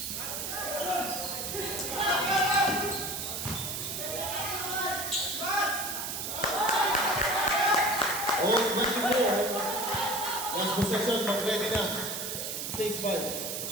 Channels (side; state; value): right; noise; hiss, 4 dB below the sound